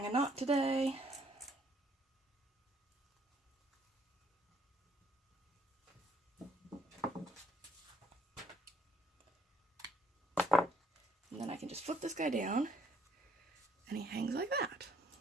a knot today. And then I can just flip this guy down and he hangs like that.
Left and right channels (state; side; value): normal; both; correlation 0.66